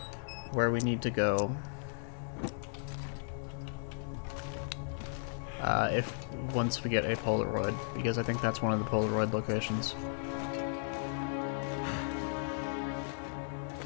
where we need to go once we get a Polaroid, because I think that's one of the Polaroid locations.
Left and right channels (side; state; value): right; silent; digital silence